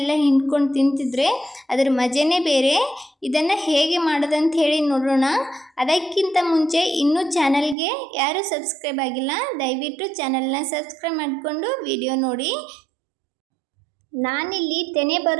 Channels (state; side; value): drops out; left; at 7.8 s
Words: ಹಿಂಡ್ಕೊಂಡು ತಿಂತಿದ್ರೆ ಅದರ ಮಜನೇ ಬೇರೆ. ಇದನ್ನು ಹೇಗೆ ಮಾಡೋದಂತ ಹೇಳಿ ನೋಡೋಣ. ಅದಕ್ಕಿಂತ ಮುಂಚೆ ಇನ್ನೂ ಚಾನಲ್ಗೆ ಯಾರು ಸಬ್ಸ್ಕ್ರೈಬ್ ಆಗಿಲ್ಲ, ದಯವಿಟ್ಟು ಚಾನಲ್ನ ಸಬ್ಸ್ಕ್ರೈಬ್ ಮಾಡಿಕೊಂಡು ವಿಡಿಯೋ ನೋಡಿ. ನಾನಿಲ್ಲಿ ತೆನೆ